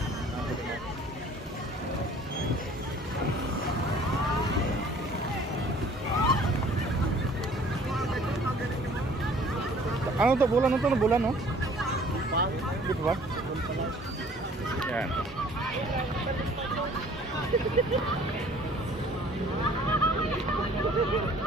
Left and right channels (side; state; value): both; normal; correlation 0.53